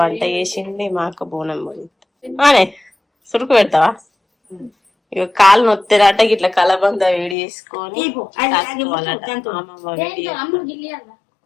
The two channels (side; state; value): right; drops out; at 7.4 s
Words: వంట చేసింది, మా అక్క బోనం పోయిద్ది. అనే సురుకు పెడతావా? ఇక కాలు నొత్తిరాట ఇట్లా కలబంద వేడి చేసుకొని